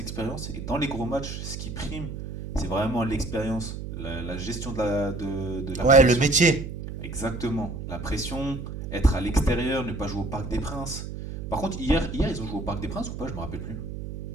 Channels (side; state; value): right; noise; hum, 7 dB below the sound